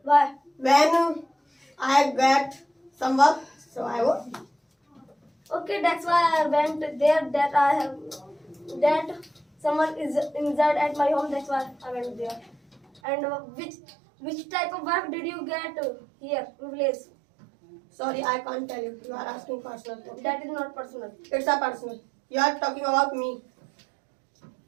Why? When I get some work, so I go. Okay, that's why I went there. That I have that someone is injured at my home. That's why I went there. And which type of work did you get here in village? Sorry, I can't tell you. You are asking personal. Okay? That is not personal. It's a personal. You are talking about me.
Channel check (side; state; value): left; drops out; at 13.0 s